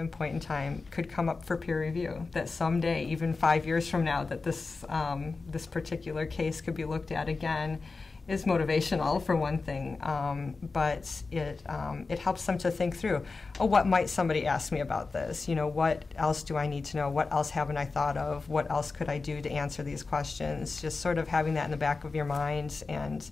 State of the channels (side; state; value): right; quieter; 4.1 dB